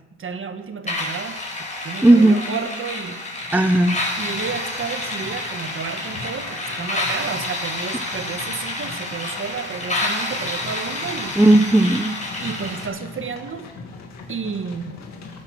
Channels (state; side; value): normal; both; correlation 0.64